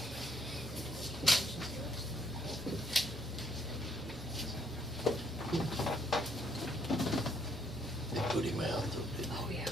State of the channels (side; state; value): both; normal; correlation 0.69